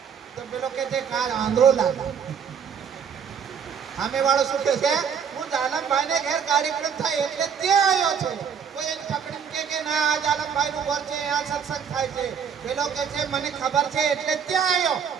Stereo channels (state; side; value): quieter; left; 7.2 dB